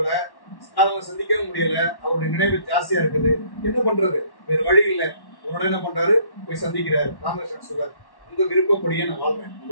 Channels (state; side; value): late; right; 1.1 ms